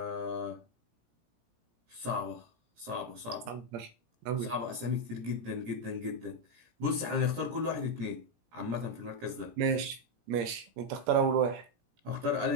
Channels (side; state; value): left; late; 17 ms